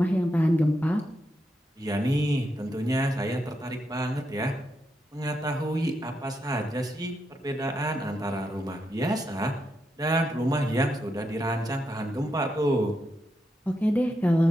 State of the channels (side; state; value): both; normal; correlation 0.84